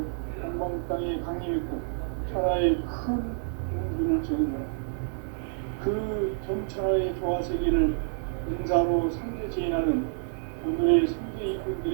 동방 땅에 강림했고 천하의 큰 운기를 정했노라. 그 정천하의 조화세계를 인사로 상제 제인하는 오늘의 상제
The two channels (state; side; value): silent; left; digital silence